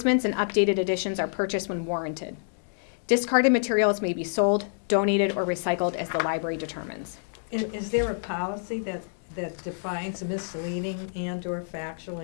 and updated editions are purchased when warranted. Discarded materials may be sold, donated, or recycled as the library determines. Is there a policy that defines misleading and/or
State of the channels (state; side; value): silent; right; digital silence